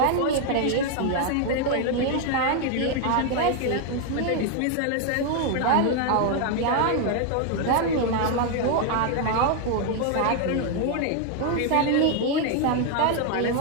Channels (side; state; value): both; different; correlation 0.00